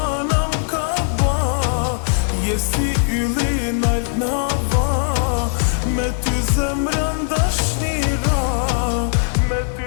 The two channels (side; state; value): right; silent; digital silence